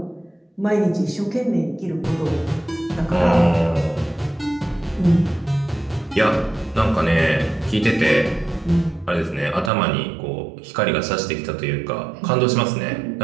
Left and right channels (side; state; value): left; drops out; at 9.7 s